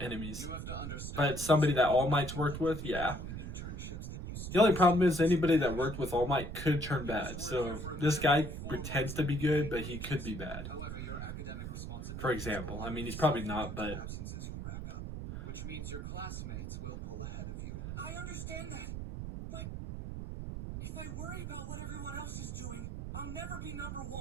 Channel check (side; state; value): right; noise; rumble, 6 dB below the sound